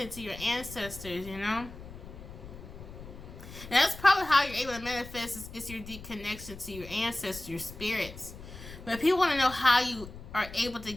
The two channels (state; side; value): noise; left; rumble, 14 dB below the sound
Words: to your ancestors, you know? And that's probably how you're able to manifest is your deep connection to your ancestors, your spirits. But people want to know how you are able to